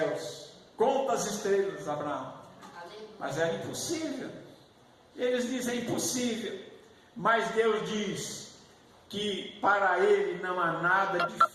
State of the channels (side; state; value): both; identical; correlation 1.00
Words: Conta as estrelas, Abraão. Mas era impossível. Eles dizem impossível. Mas Deus diz que para ele não há nada